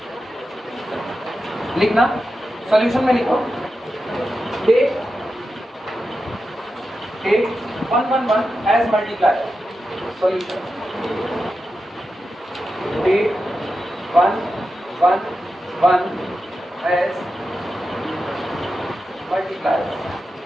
लिखना सॉल्यूशन में लिखो, take 1 1 1 as multiplier, solution take 1 1 1 as multiplier.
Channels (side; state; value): both; normal; correlation 0.90